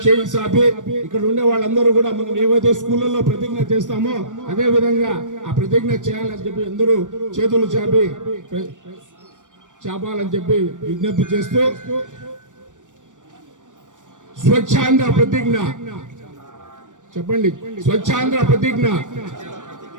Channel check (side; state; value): left; late; 0.87 ms